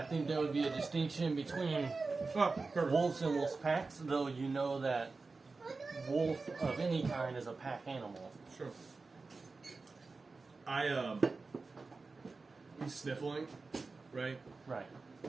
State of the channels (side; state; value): left; quieter; 4.0 dB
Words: think there would be a distinction between perfect. wolves and wolf packs, though you know that wolf of any kind is a pack animal. Sure. He's sniffling, right? Right,